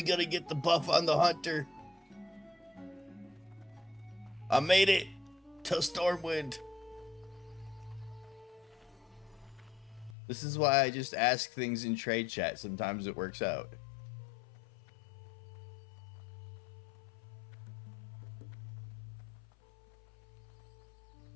gotta get the buff on the hunter. I made it to Stormwind. This is why I just ask things in trade chat. Sometimes it works out.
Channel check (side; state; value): right; drops out; at 10.2 s